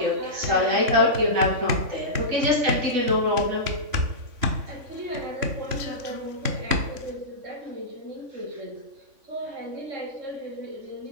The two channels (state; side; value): late; left; 3.5 ms